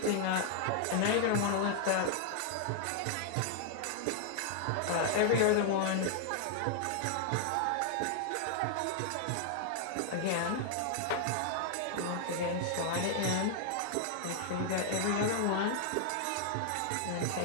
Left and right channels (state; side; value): different; both; correlation 0.00